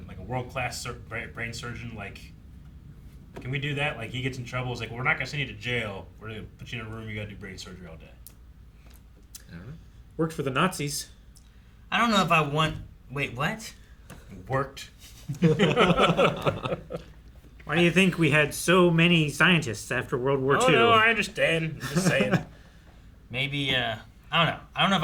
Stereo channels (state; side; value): identical; both; correlation 1.00